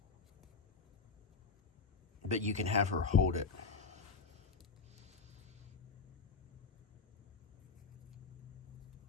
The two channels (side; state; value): right; quieter; 4.6 dB